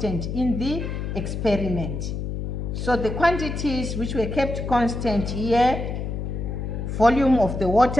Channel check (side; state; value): left; noise; hum, 4 dB below the sound